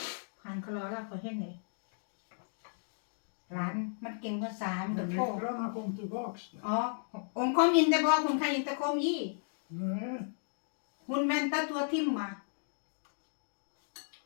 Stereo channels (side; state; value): right; silent; digital silence